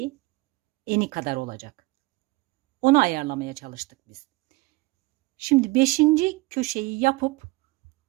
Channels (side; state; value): left; quieter; 22.8 dB